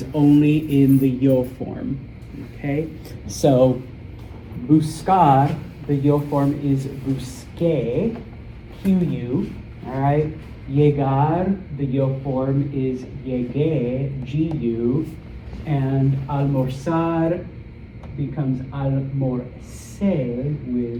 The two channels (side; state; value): both; identical; correlation 1.00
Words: only in the yo form, okay? So, buscar, the yo form is busqué, QU, all right? Llegar, the yo form is llegué, GU, and almorzar becomes almorcé